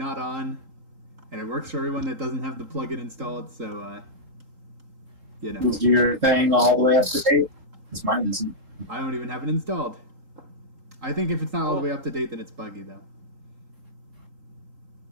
on, and it works for everyone that doesn't have the plugin installed. So you know, Is your thing all the way up to date? Because mine isn't. I don't even have it installed. I think if it's not all the way up to date, then it's buggy though.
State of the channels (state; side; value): late; left; 3.8 ms